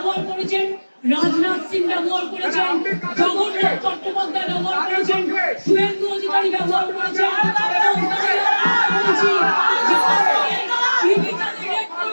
করেছেন, রাজনাথ সিং ব্যবহার করেছেন, জগন্নাথ চট্টোপাধ্যায় ব্যবহার করেছেন, শুভেন্দু অধিকারী ব্যবহার করেছেন,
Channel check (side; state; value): both; inverted; correlation -1.00